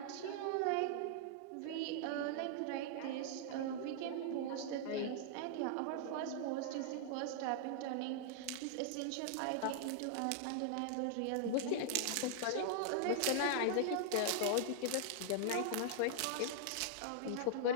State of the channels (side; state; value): both; different; correlation -0.01